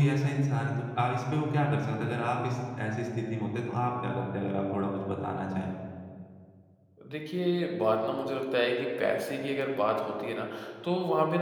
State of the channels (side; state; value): both; identical; correlation 1.00